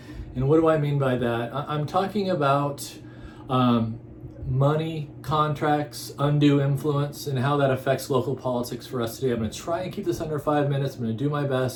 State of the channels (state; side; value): identical; both; correlation 1.00